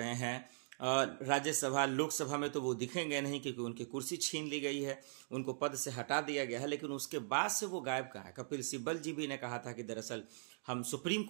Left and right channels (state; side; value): silent; left; digital silence